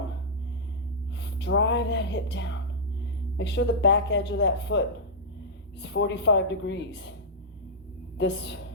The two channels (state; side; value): normal; both; correlation -0.11